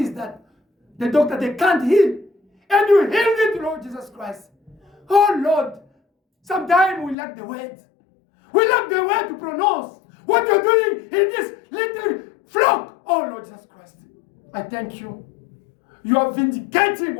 that the doctor, they can't heal. And you healed it, Lord Jesus Christ. Oh, Lord, sometimes we lack the word. We lack the word to pronounce what you're doing in this little flock. Oh, Lord Jesus Christ, I thank you. You are vindicating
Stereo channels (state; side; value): drops out; right; at 7.2 s